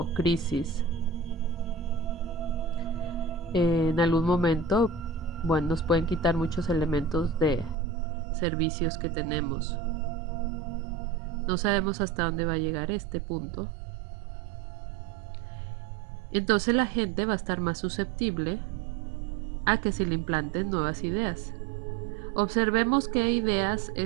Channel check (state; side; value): drops out; left; at 7.8 s